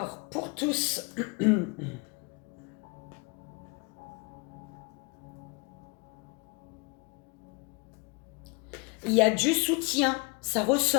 pour tous, il y a du soutien. Ça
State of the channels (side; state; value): right; quieter; 30.0 dB